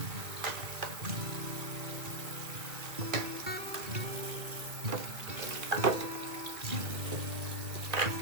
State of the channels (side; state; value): left; late; 2.0 ms